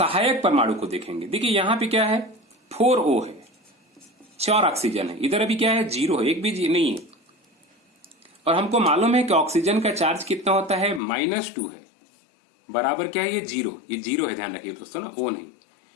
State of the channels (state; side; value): drops out; right; at 11.0 s